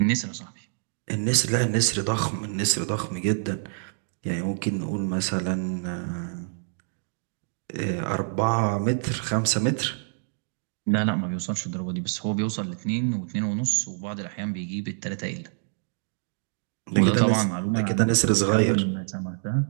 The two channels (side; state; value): left; silent; digital silence